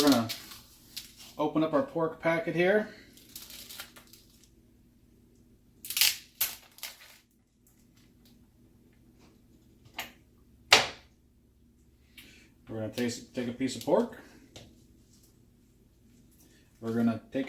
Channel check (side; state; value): both; identical; correlation 1.00